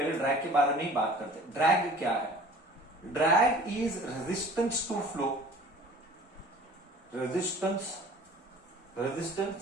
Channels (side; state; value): both; normal; correlation 0.46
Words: ड्रैग के बारे में ही बात करते हैं। ड्रैग क्या है? Drag is resistance to flow. Resistance